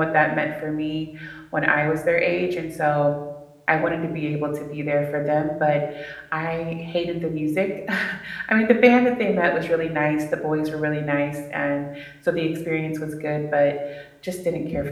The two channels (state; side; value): identical; both; correlation 1.00